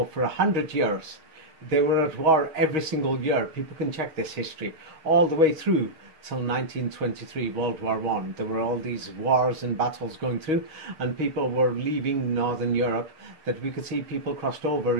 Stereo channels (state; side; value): late; left; 6.3 ms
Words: for 100 years. They were at war every single year. People can check this history all the way through till 1923, World War I. There were all these wars and battles going through, and people were leaving Northern Europe, that we could see people crossed over